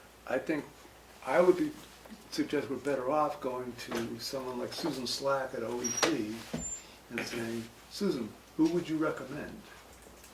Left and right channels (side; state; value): both; identical; correlation 1.00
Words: I think I would suggest we're better off going to someone like Susan Slack at OEP and saying, Susan, who would you recommend?